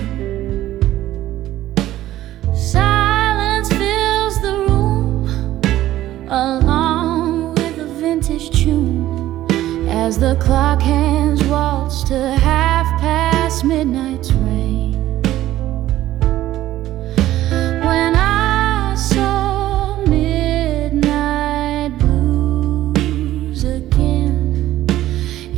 Silence fills the room, along with a vintage tune, as the clock hands waltz to half past midnight's rain. When I saw midnight blues again,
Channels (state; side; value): quieter; left; 14.2 dB